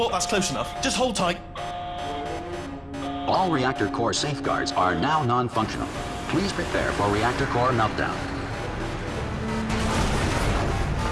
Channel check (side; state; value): both; identical; correlation 1.00